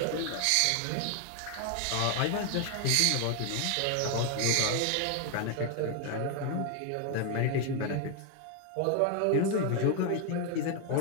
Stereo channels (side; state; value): both; different; correlation 0.01